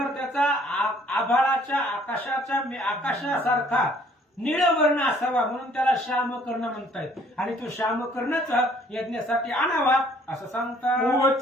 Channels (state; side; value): normal; both; correlation 0.60